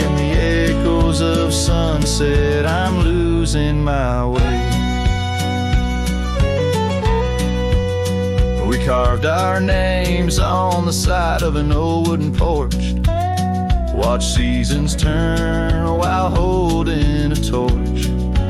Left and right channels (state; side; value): identical; both; correlation 1.00